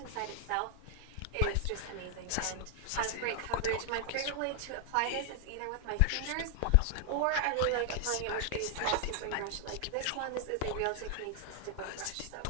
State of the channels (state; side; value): different; both; correlation 0.00